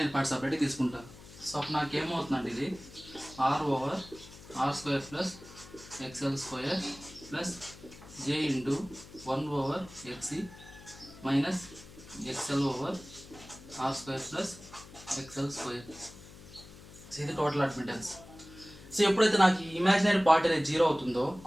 పార్ట్ సపరేట్గా తీసుకుంటాను. సో అప్పుడు నాకు ఏమవుతుందంటే ఇది R square plus XL square plus J into 1/XC minus XL over R square plus XL square. So ఇది టోటల్ అడ్మిటెన్స్. సో ఎప్పుడైతే నాకు ఈ ఇమాజినరీ పార్ట్ అనేది 0 అవుతుందో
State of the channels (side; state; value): left; noise; hum, 18 dB below the sound